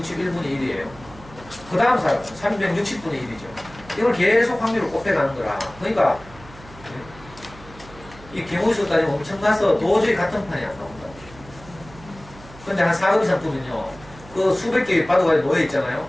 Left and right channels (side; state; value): right; noise; hum, 20 dB below the sound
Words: 1이에요. 그 다음 사람은 360분의 1이죠. 이걸 계속 확률을 곱해가는 거라. 그러니까 이 경우수 따지면 엄청나서 도저히 같은 판이 안 나온다. 근데 한 4급 이상 뜨면요. 그 수백 개의 바둑알이 놓여있잖아요.